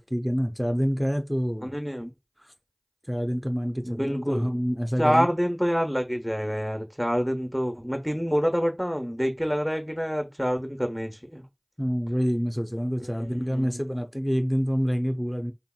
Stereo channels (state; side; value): identical; both; correlation 1.00